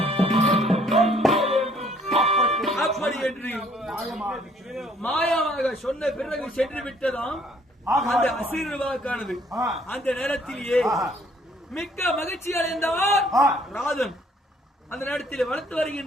அப்படி என்று மாயமாக சொன்ன பிறகு சென்று விட்டதாம் அந்த அசிறுவாக்கானது. அந்த நேரத்திலேயே மிக்க மகிழ்ச்சி அடைந்தவர் ராதன். அந்த நேரத்தில் வளர்த்து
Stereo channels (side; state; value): both; normal; correlation 0.62